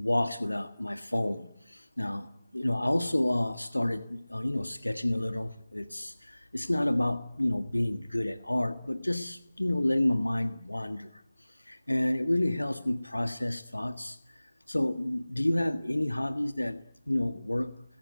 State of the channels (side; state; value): both; inverted; correlation -0.99